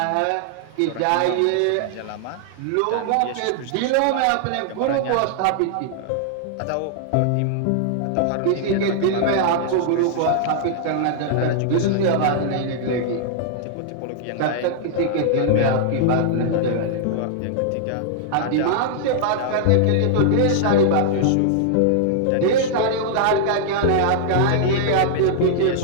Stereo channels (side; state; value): both; different; correlation -0.01